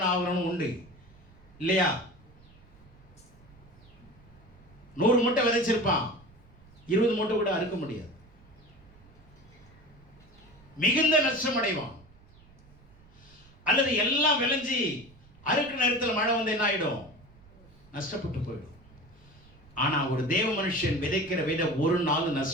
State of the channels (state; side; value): noise; right; rumble, 25 dB below the sound